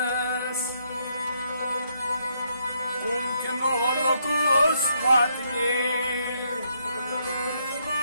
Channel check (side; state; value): both; inverted; correlation -0.74